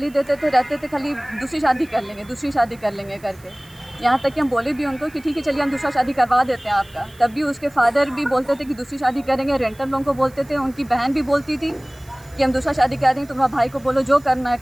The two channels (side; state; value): right; noise; hiss, 26 dB below the sound